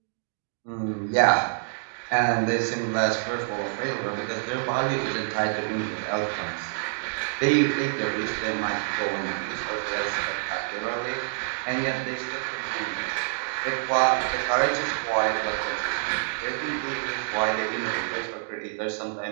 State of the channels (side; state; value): left; silent; digital silence